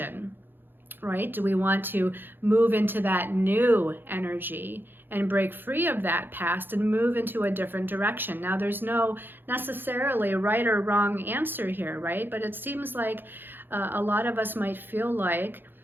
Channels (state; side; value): late; left; 0.098 ms